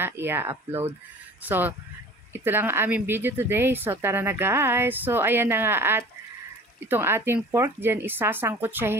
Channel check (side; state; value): both; normal; correlation 0.44